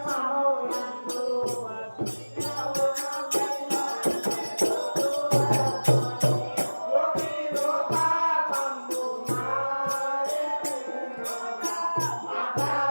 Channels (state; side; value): inverted; both; correlation -1.00